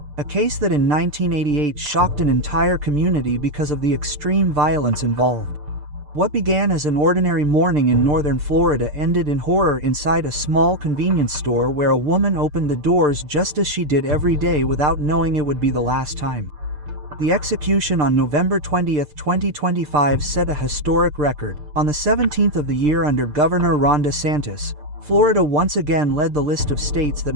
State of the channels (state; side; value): late; left; 6.7 ms